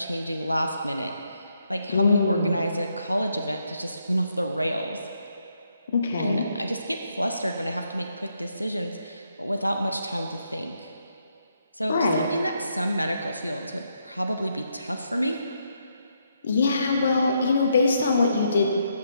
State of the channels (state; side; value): inverted; both; correlation -0.77